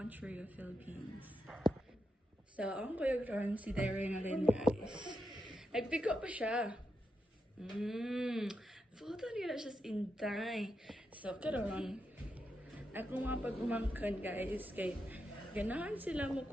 of Philippines. So, ang kuyog ron si Darinalyn, guys. Nag-pick up pa siya. Photo nila siya sa intay. So, karon ako nga pag-umangkan, guys, kay ganahan sila mo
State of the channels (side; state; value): both; normal; correlation 0.86